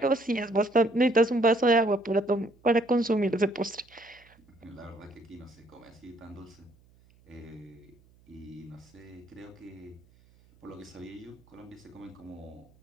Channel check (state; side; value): noise; right; hum, 29 dB below the sound